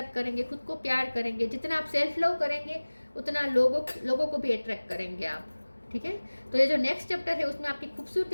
करेंगे, खुद को प्यार करेंगे। जितना आप सेल्फ लव करेंगे उतना लोगों को भी अट्रैक्ट करेंगे आप। ठीक है, तो ये जो नेक्स्ट चैप्टर है उसमें आपकी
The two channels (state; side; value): inverted; both; correlation -1.00